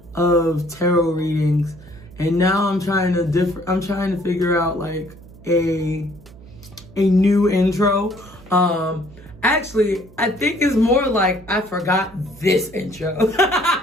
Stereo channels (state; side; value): noise; right; hum, 22 dB below the sound